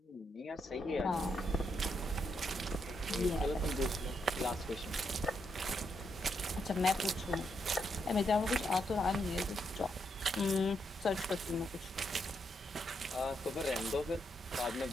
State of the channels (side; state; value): both; normal; correlation 0.79